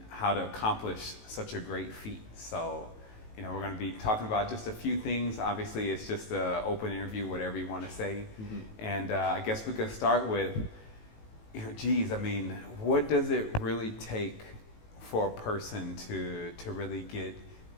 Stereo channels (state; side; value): late; right; 18 ms